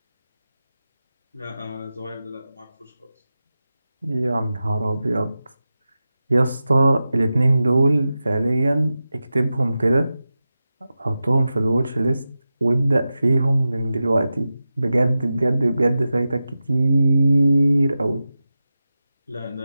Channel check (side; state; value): both; inverted; correlation -0.93